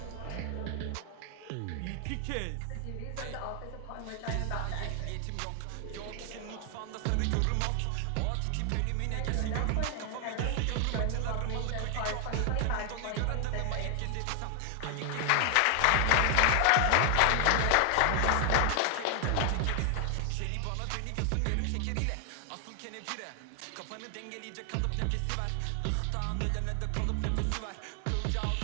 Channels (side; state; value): both; different; correlation 0.00